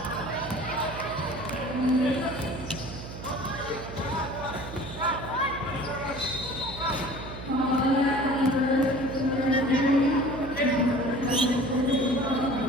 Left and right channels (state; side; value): noise; right; hum, 11 dB below the sound